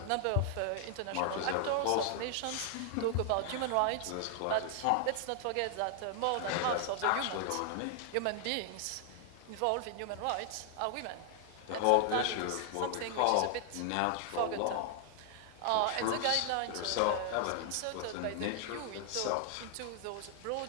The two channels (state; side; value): different; both; correlation 0.00